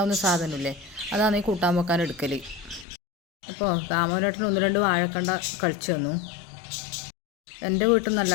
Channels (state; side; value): drops out; right; at 2.9 s